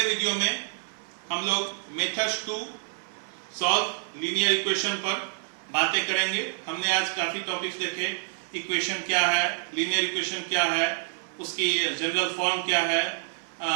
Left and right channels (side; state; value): left; silent; 60 dB below the other